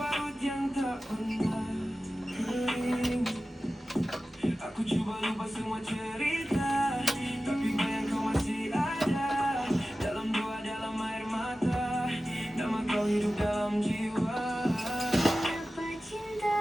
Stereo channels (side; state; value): both; normal; correlation 0.95